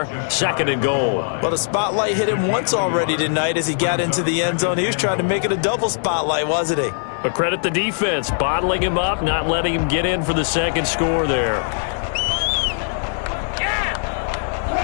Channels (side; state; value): right; silent; digital silence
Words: 2nd and goal. Well, the spotlight hit him once already tonight as he got into the end zone. He was trying to make it a double spotlight, wasn't he? But credit the defense, bottling him up, not letting him get in for the second score there.